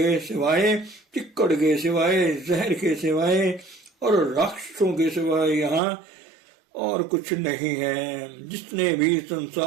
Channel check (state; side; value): drops out; left; at 5.8 s